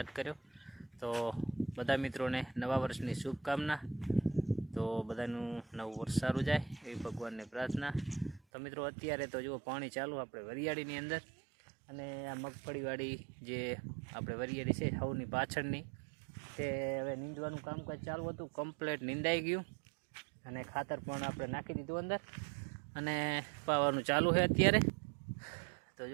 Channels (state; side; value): drops out; left; at 8.4 s